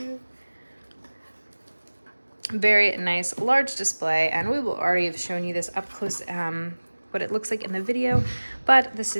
Very nice large display, and we will already have shown you this up close, what it looks like in the video, but this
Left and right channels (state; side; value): inverted; both; correlation -1.00